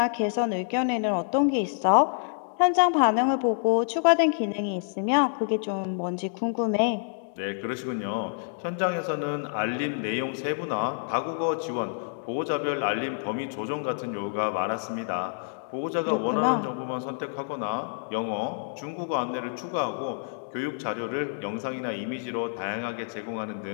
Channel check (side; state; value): right; silent; digital silence